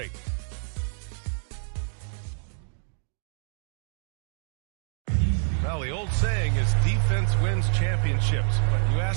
Well, the old saying is defense wins championships. But you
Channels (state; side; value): silent; left; digital silence